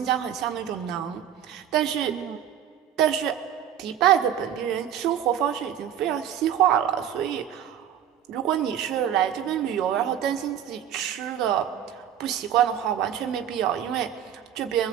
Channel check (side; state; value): left; quieter; 9.8 dB